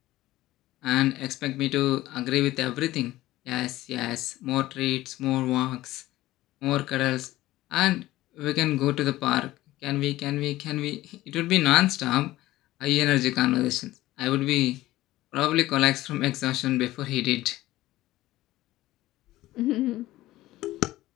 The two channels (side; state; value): right; quieter; 16.5 dB